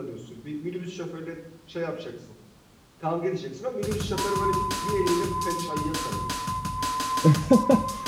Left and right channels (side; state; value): both; identical; correlation 1.00